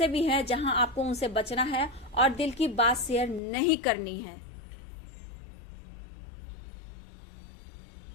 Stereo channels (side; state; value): right; drops out; at 3.4 s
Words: भी हैं जहां आपको उनसे बचना है और दिल की बात शेयर नहीं करनी है।